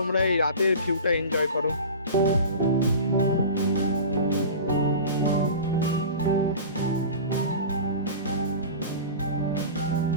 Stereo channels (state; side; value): inverted; both; correlation -0.34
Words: এই রাতের ভিউটা এনজয় করো।